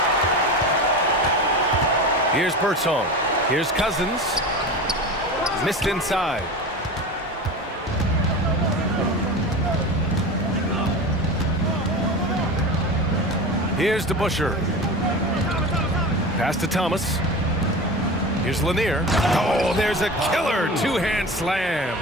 Here's Bertone. Here's Cousins. Missed inside. Here's DeBuscher. Pass to Thomas. Here's Lanier. Oh, there's a killer two-hand slam.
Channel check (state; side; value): normal; both; correlation 0.30